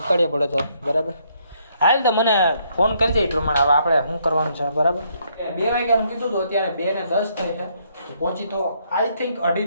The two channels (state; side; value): inverted; both; correlation -0.71